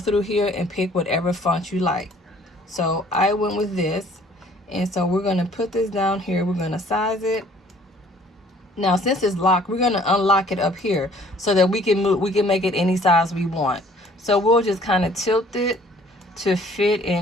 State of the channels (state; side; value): normal; both; correlation 0.57